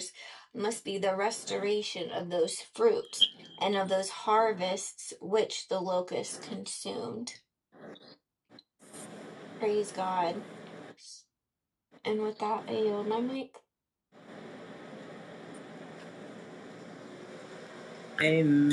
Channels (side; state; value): both; identical; correlation 1.00